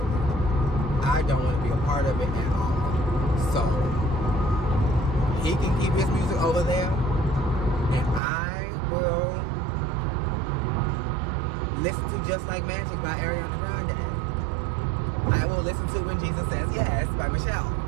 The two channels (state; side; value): drops out; left; at 8.2 s